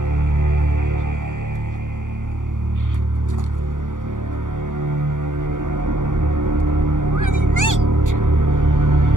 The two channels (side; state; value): left; late; 0.87 ms